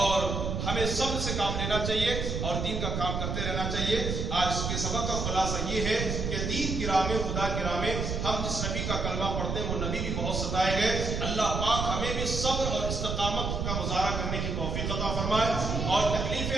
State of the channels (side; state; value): right; noise; rumble, 2 dB below the sound